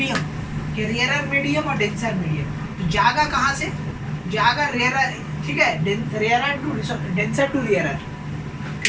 कि रेयर मीडियम और डेंसर मीडियम. तो जागा कहाँ से, जागा रेयर. ठीक है, rare to denser to rare.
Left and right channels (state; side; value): identical; both; correlation 1.00